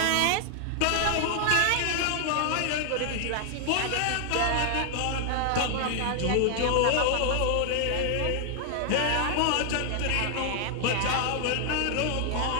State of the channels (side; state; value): both; different; correlation 0.00